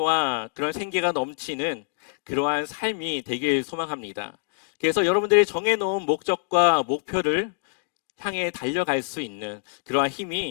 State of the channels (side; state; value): right; silent; digital silence